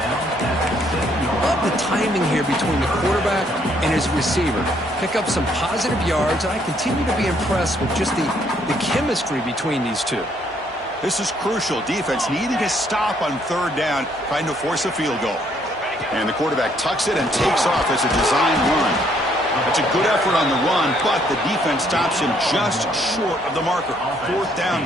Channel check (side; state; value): both; normal; correlation 0.68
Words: Love the timing here between the quarterback and his receiver. Pick up some positive yards, and I continue to be impressed with just the chemistry between these two. This is crucial. Defense needing a stop on 3rd down, trying to force a field goal. And the quarterback tucks it and takes off as a design run. It's a good effort on the run, but the defense stops him just short of the marker. 4th down